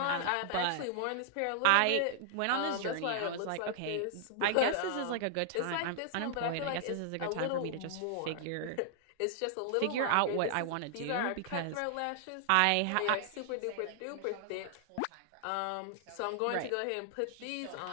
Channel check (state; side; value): different; both; correlation 0.00